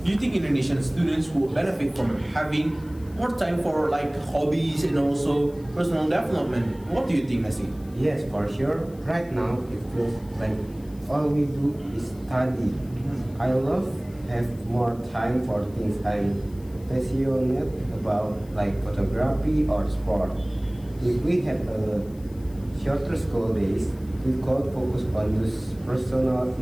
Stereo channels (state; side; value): noise; left; hiss, 26 dB below the sound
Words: do you think Indonesian students will benefit from having more time for like hobbies and also personal development? What do you think, Messi? Yes, for sure. Right now, it feels like all we do is study. I love have more time for things I'm passionate about, like photography or sport. If we had a shorter school days, we could focus on those personal